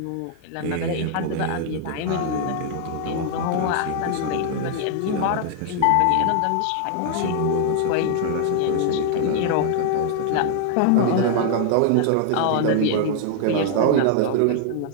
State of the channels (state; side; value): different; both; correlation 0.00